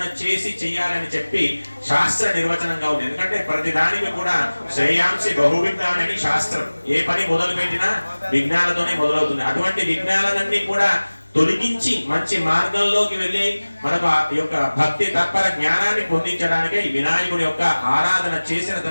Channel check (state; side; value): inverted; both; correlation -1.00